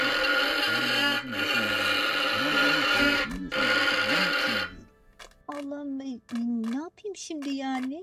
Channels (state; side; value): identical; both; correlation 1.00